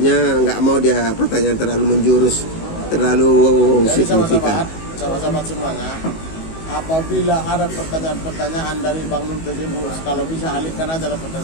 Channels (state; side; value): late; right; 19 ms